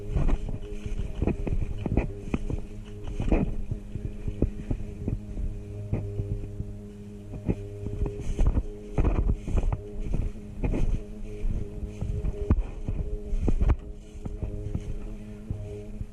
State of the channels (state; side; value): identical; both; correlation 1.00